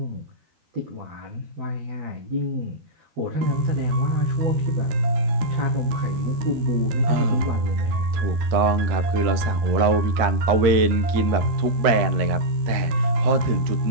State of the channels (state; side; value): late; left; 13 ms